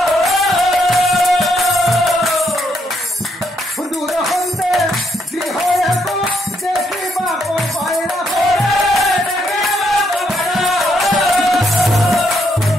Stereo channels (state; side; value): normal; both; correlation 0.74